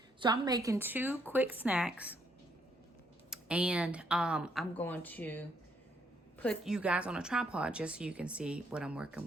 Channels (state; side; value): normal; both; correlation 0.72